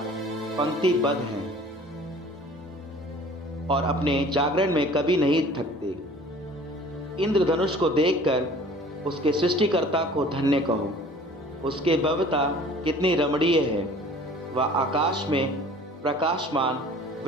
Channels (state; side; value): normal; both; correlation 0.48